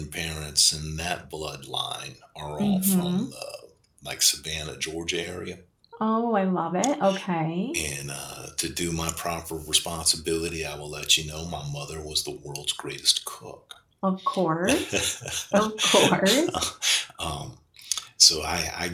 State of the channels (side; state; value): both; identical; correlation 1.00